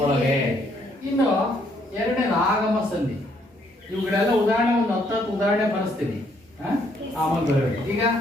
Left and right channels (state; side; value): normal; both; correlation 0.69